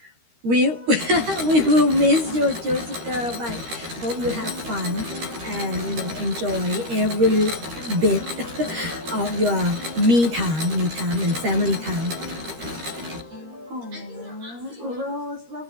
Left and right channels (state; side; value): late; left; 13 ms